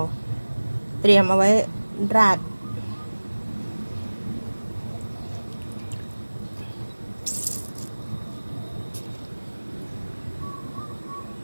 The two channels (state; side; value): inverted; both; correlation -1.00